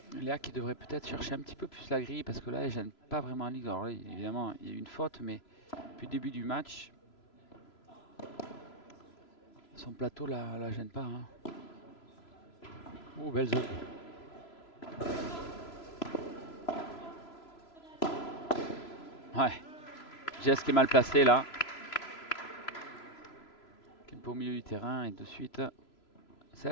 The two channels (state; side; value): late; right; 3.0 ms